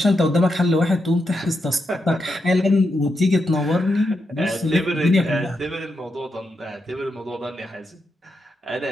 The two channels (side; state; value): both; normal; correlation 0.84